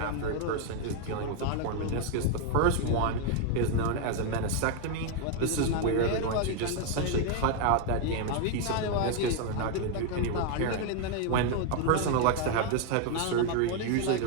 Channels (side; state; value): both; different; correlation 0.01